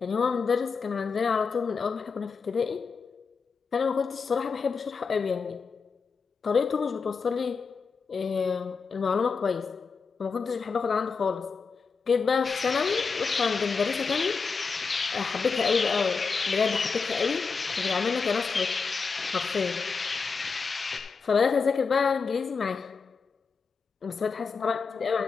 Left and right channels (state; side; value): quieter; right; 5.1 dB